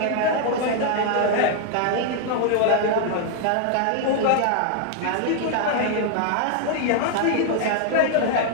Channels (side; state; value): both; different; correlation 0.00